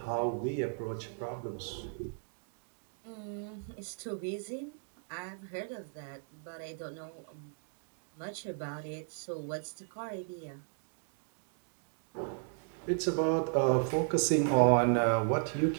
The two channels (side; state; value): left; silent; 54 dB below the other